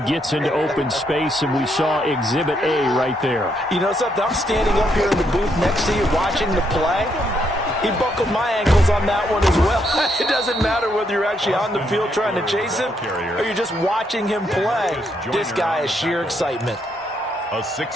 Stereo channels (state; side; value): normal; both; correlation 0.76